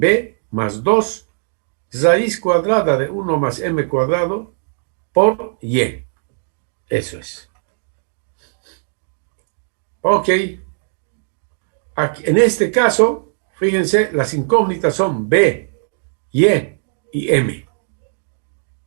más 2 raíz cuadrada de 1 más M cuadrado por Y. Eso es. Ok. Aquí, en este caso, fíjense, las incógnitas son B, Y y M.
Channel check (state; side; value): silent; left; digital silence